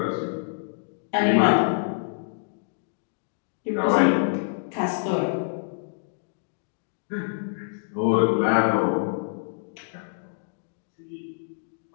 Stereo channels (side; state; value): right; silent; digital silence